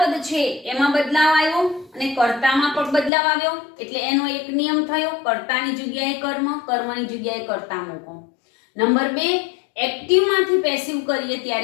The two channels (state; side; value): drops out; right; at 3.1 s